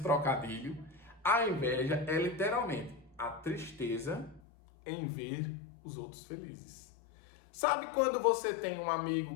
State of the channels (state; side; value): drops out; right; at 4.4 s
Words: trocadilho? A inveja é literalmente a tristeza em ver os outros felizes. Sabe quando você tem um amigo